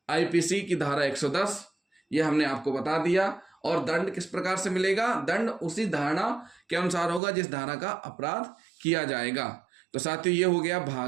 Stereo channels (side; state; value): left; drops out; at 7.2 s